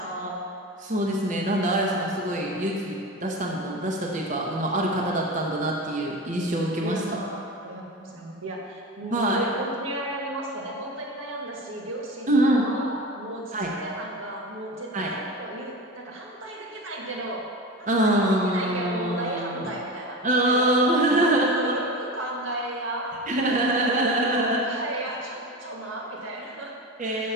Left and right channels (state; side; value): normal; both; correlation 0.28